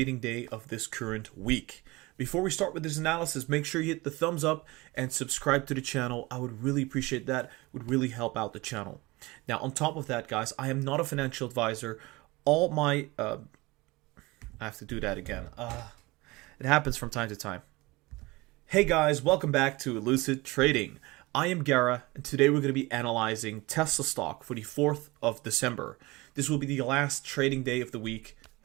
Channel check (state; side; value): quieter; left; 22.4 dB